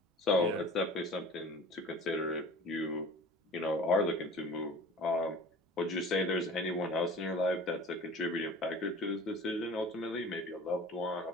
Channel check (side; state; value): both; normal; correlation 0.42